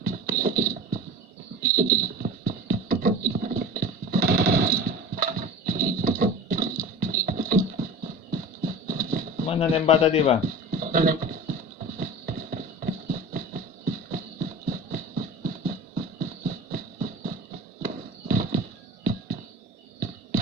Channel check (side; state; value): both; normal; correlation 0.35